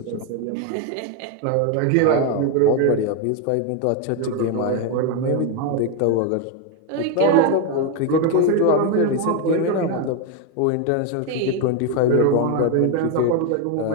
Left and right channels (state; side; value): different; both; correlation 0.01